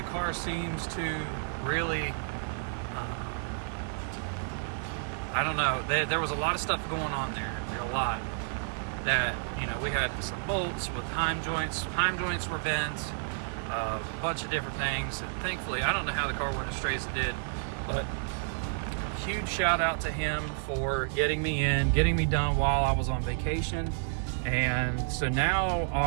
car seems to really, I don't know, there was a lot of stuff going on there. A lot that, you know, we had some bolts with heim joints were bent, a bunch of different things, and thankfully, I don't know how the car went as straight as it did, but huge shout out to him for getting me done while I was on vacation. And so now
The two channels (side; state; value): left; silent; digital silence